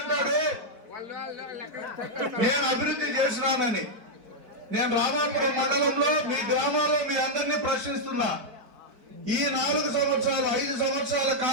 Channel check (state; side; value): late; left; 4.5 ms